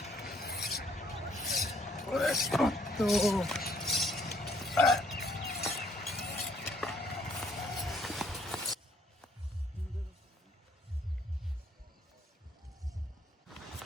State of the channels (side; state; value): both; normal; correlation 0.65